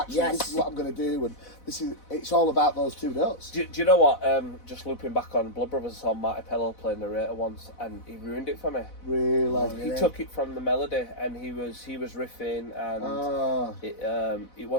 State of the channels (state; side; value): late; right; 4.0 ms